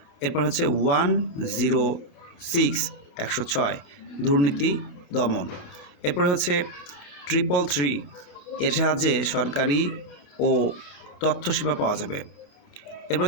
এরপর হচ্ছে 106 106 দুর্নীতি দমন। এরপরে হচ্ছে 333, এর সাহায্যে সরকারি ও তথ্য সেবা পাওয়া যাবে। এরপর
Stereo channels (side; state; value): right; late; 28 ms